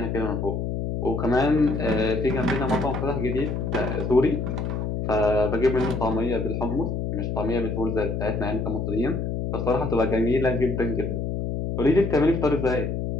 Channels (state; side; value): noise; left; hum, 2 dB below the sound